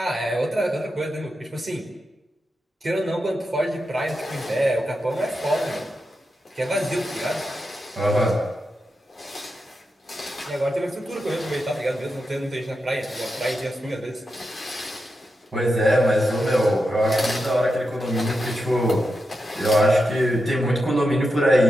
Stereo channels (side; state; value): both; normal; correlation 0.88